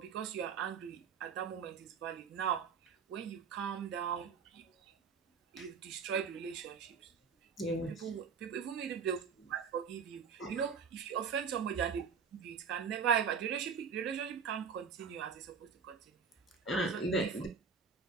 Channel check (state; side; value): quieter; left; 6.1 dB